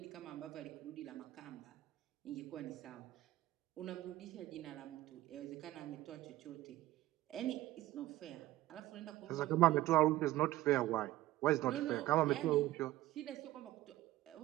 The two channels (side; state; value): left; quieter; 16.1 dB